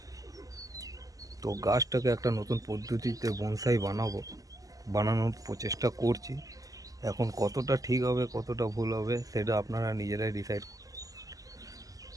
তো গাছটাকে একটা নতুন পদ্ধতিতে বনসাই বানানোর প্রচেষ্টা করছি। এখন কতটা ঠিক হবে কতটা ভুল হবে সেটা আপনারা নিজেরাই ডিসাইড করুন।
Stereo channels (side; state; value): left; late; 0.17 ms